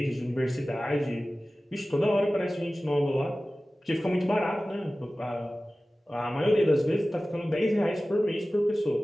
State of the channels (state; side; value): normal; both; correlation 0.96